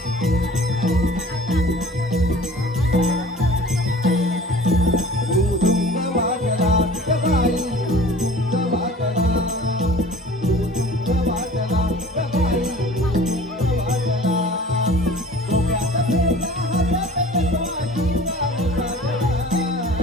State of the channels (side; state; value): both; normal; correlation 0.45